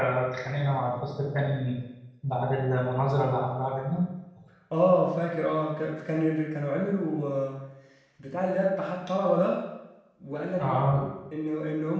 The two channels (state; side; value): identical; both; correlation 1.00